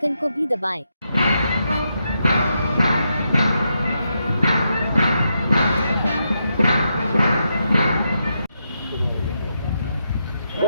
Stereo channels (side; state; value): both; inverted; correlation -0.83